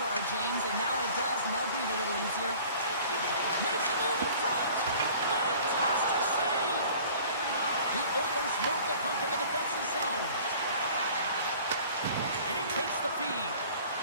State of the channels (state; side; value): inverted; both; correlation -0.48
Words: James, and now it does, and they'll breathe a little easier. Makes a move in front. Fantastic save. The Oilers move the puck in the defensive zone. And he takes the feed.